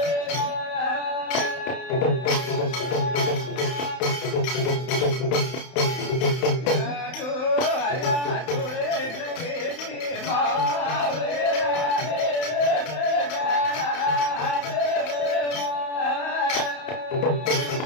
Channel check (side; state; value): right; late; 31 ms